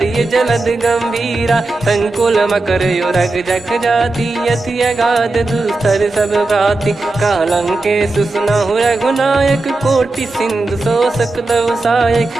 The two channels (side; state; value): left; quieter; 3.1 dB